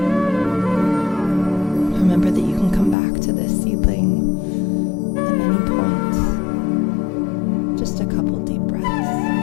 Remember that you can come back to this seedling at any point. Just a couple deep breaths.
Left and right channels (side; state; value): right; drops out; at 3.0 s